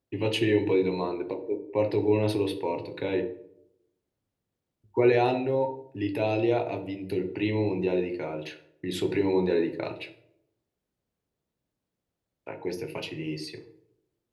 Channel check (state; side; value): identical; both; correlation 1.00